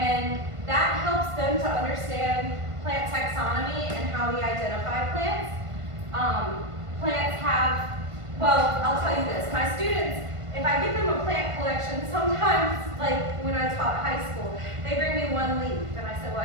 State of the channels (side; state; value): left; late; 1.5 ms